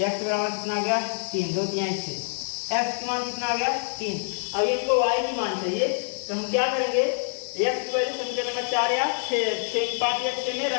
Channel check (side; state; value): right; silent; digital silence